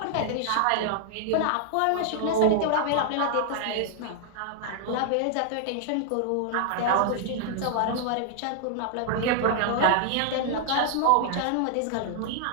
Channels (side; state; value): both; different; correlation -0.01